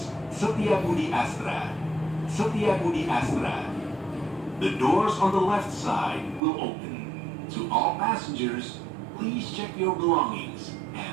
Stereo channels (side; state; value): left; drops out; at 6.4 s